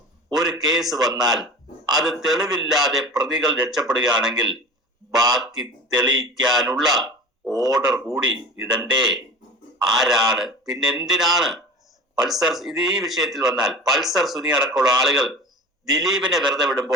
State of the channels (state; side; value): normal; both; correlation 0.36